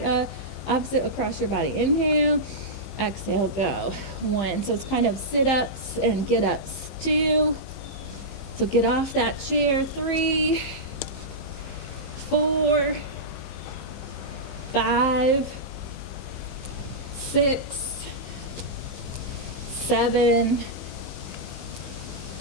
Opposite across your body. Inhale, exhale, go. 1. So it's kind of sit-ups and get-ups. 2. So get off that chair. 3, 4, 5, 6, 7,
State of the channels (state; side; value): late; right; 15 ms